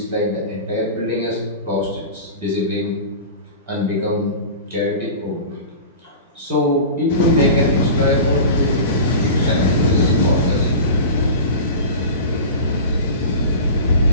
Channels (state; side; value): inverted; both; correlation -0.33